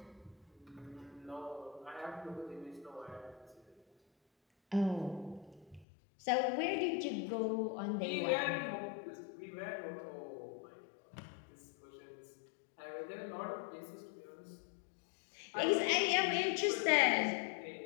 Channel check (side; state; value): right; drops out; at 5.9 s